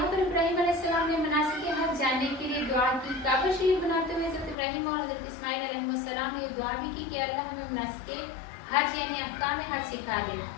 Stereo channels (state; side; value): drops out; right; at 4.5 s